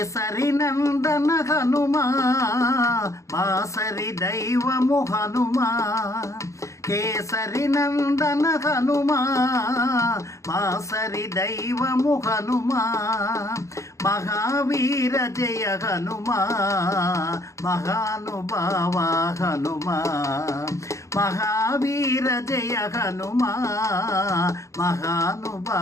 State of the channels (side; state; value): right; late; 0.15 ms